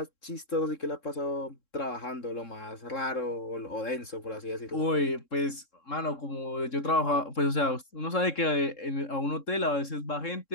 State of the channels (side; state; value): right; late; 3.7 ms